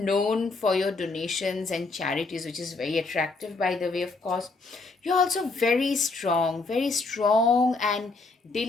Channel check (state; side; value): quieter; right; 3.7 dB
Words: for your donations and charities, which is very attractive, by the way, of course. You're also very strong and